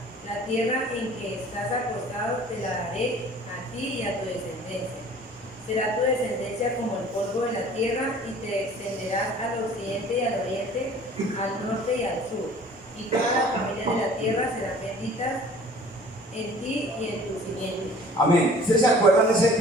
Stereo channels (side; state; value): both; normal; correlation 0.49